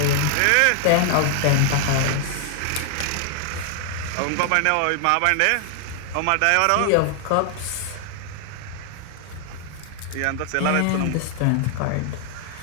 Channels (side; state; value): both; different; correlation 0.00